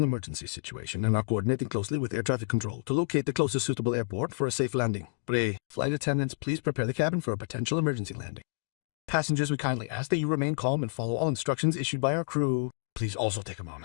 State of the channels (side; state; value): right; silent; digital silence